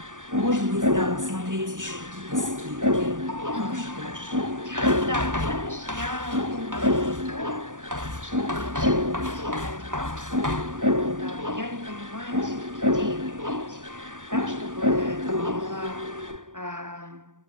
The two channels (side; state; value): left; late; 0.88 ms